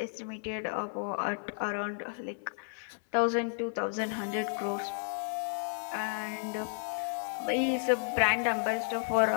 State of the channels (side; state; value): right; silent; 56 dB below the other